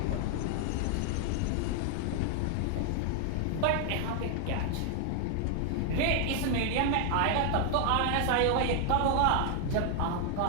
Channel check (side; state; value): both; different; correlation 0.00